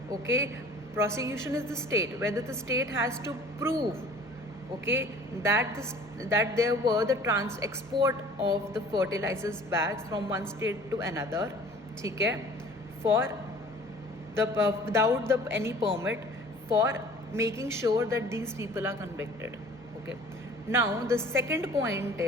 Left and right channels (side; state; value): both; normal; correlation 0.48